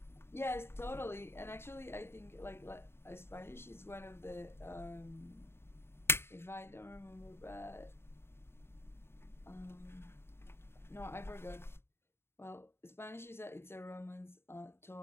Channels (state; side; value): late; right; 0.12 ms